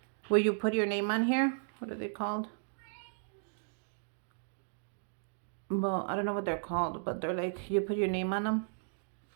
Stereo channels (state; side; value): silent; left; digital silence